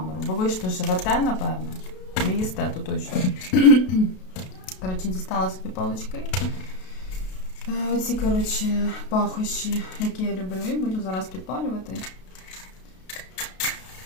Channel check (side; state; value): right; late; 32 ms